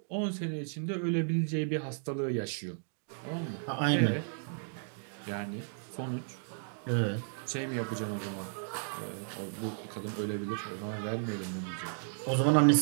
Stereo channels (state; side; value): silent; left; digital silence